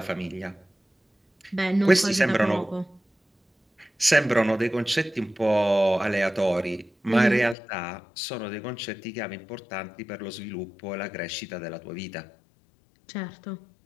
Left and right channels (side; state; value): right; drops out; at 7.6 s